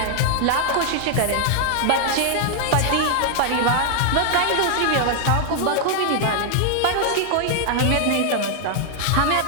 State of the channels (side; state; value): both; different; correlation 0.00